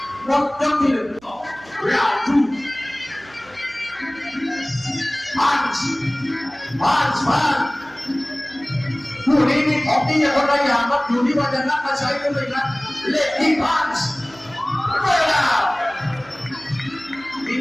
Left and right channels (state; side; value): noise; right; hum, 26 dB below the sound